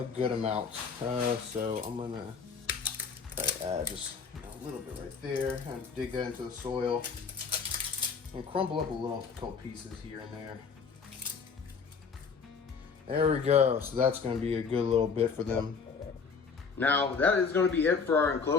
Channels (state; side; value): quieter; right; 5.4 dB